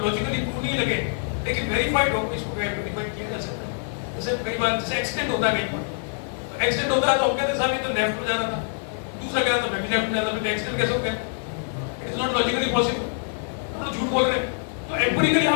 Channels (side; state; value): right; silent; digital silence